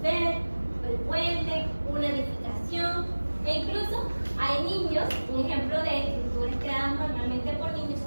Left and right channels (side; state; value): both; inverted; correlation -1.00